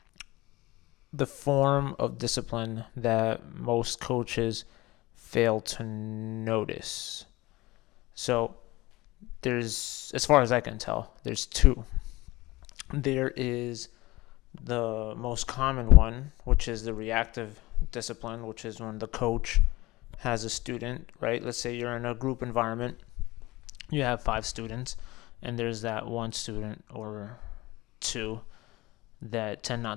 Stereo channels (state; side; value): quieter; right; 20.2 dB